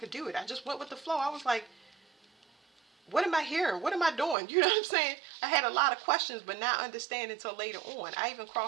do it. I just went with the flow. I was like, what am I hearing? What am I doing? You know what I'm saying? I had a lot of questions, but not understanding until later on. I even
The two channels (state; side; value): drops out; left; at 4.4 s